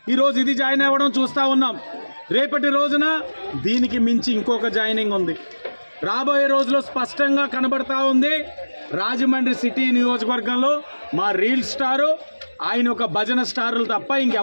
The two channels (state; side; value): inverted; both; correlation -1.00